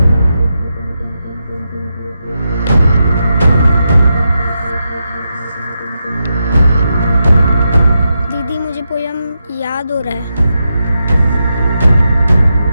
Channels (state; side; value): inverted; both; correlation -0.86